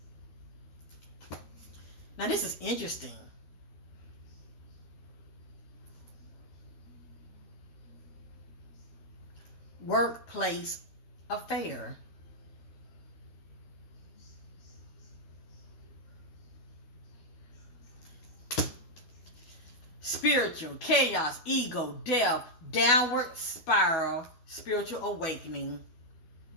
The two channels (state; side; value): late; right; 12 ms